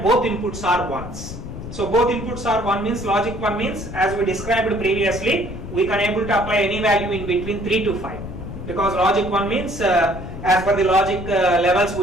both inputs are 1s. So both inputs are 1 means logic 1 means, as we described previously, we can able to apply any value in between 3 to 5. Because logic 1 means as per the logic levels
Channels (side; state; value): left; noise; rumble, 9 dB below the sound